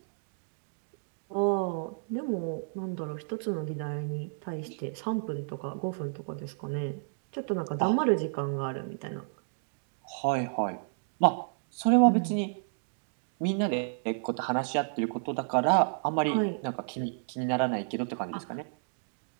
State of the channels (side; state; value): left; silent; digital silence